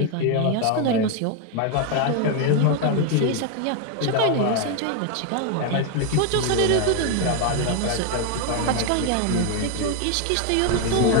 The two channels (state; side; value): different; both; correlation 0.01